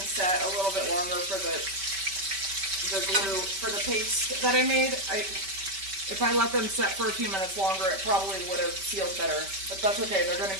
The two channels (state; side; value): late; left; 5.2 ms